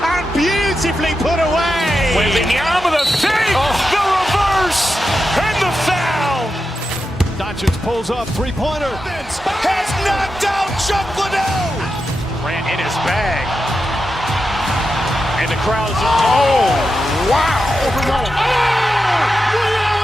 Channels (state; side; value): normal; both; correlation 0.89